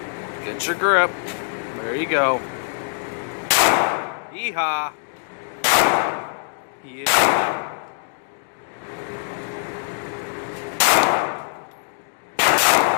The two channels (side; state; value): right; silent; digital silence